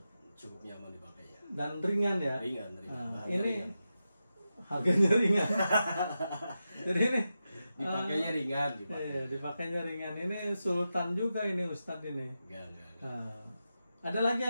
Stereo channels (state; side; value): inverted; both; correlation -0.90